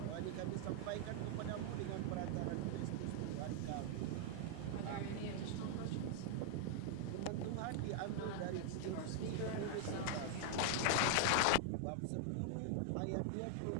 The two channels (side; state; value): both; different; correlation 0.00